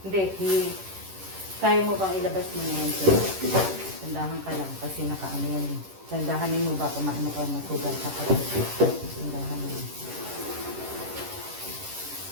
Hindi, kaya mo bang ilabas mo na yan, sir? Tandahan ka lang kasi nakaano yan. Tandahanin mo ba kung maano ka matugal ka pa. Tandahan mo.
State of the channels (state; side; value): late; left; 11 ms